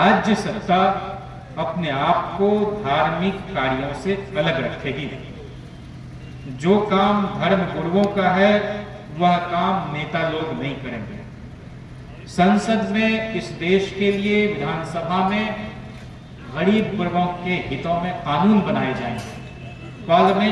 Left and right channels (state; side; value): identical; both; correlation 1.00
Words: सत्ता अपने आप को धार्मिक कार्यों से अलग रखेगी। जो काम धर्म गुरुओं का है वह काम नेता लोग नहीं करेंगे। संसद में, इस देश के लिए, विधानसभा में गरीब वर्गों के हितों में कानून बनाए जाएंगे।